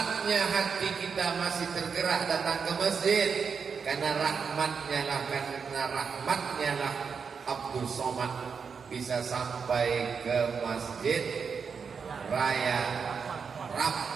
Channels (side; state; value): left; quieter; 5.9 dB